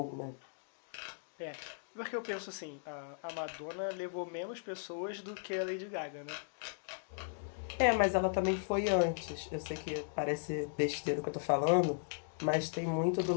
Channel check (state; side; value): silent; right; digital silence